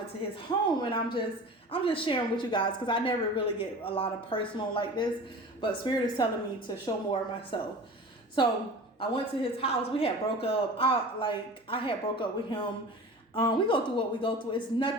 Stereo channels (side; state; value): both; normal; correlation 0.38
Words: to his home, and I'm just sharing with you guys, because I never really get a lot of personal like this, but Spirit is telling me to show more of myself. So I went to his house. We had broke up. I had broke up with him. We go through what we go through. It's